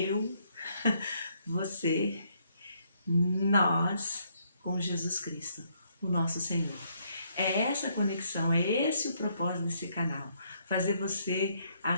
você, nós, com Jesus Cristo, o nosso Senhor. É essa conexão, é esse o propósito desse canal, fazer você,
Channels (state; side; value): inverted; both; correlation -0.71